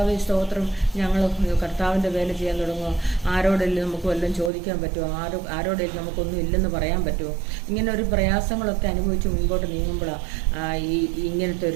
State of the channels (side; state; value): left; drops out; at 4.5 s